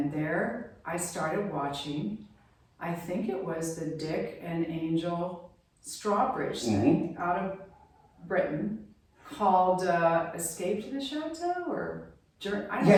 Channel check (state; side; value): identical; both; correlation 1.00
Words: there I started watching, I think it was the Dick and Angel Strawbridge thing out of Britain called Escape to the Chateau or I don't know.